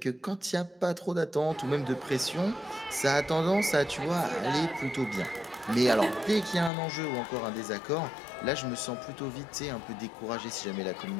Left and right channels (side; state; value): right; drops out; at 6.7 s